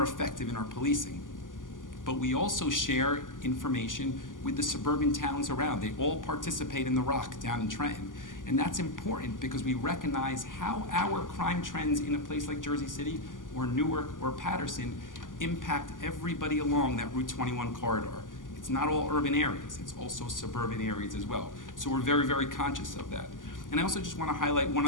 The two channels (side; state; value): right; late; 0.88 ms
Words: effective in our policing. But we also share information with the suburban towns around. They all participate in the Rock down in Trenton. And that's important because we recognize how our crime trends in a place like Jersey City or Newark or Patterson impact everybody along that Route 21 corridor. It's not all urban areas, it's also suburban areas as well. So we're very, very conscious of that. And I also just want to highlight one